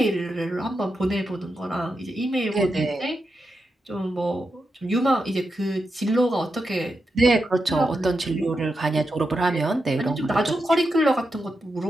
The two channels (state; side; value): normal; both; correlation 0.87